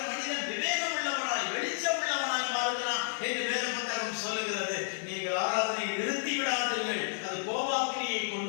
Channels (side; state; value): right; silent; digital silence